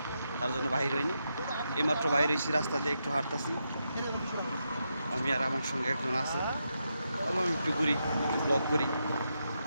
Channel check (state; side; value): inverted; both; correlation -0.84